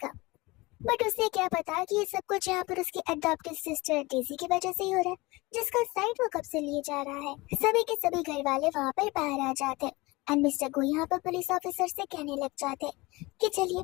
बट उसे क्या पता कि ये सब कुछ यहाँ पर उसकी अडॉप्टेड सिस्टर डेजी की वजह से ही हो रहा है, जिसका साइड वो कब से लिए जा रहा है। सभी के सभी घर वाले वहाँ पर बाहर आ जाते हैं, एंड मिस्टर गो यहाँ पर पुलिस ऑफिसर से कहने लग जाते हैं कि चलिए,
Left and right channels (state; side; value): quieter; right; 22.7 dB